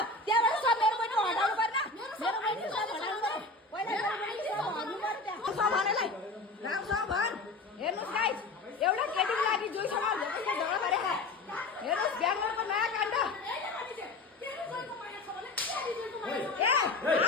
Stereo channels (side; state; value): right; quieter; 3.2 dB